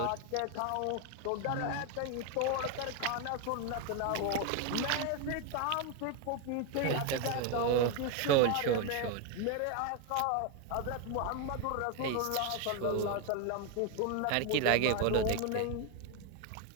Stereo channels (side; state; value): both; different; correlation 0.02